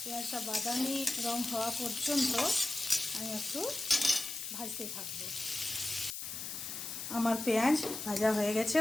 পেঁয়াজটা বাদামি রং হওয়া পর্যন্ত আমি একটু ভাজতে থাকবো। আমার পেঁয়াজ ভাজা হয়ে গেছে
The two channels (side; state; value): left; noise; hiss, 6 dB below the sound